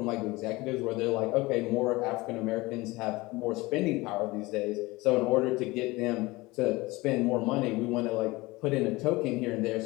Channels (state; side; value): quieter; right; 21.6 dB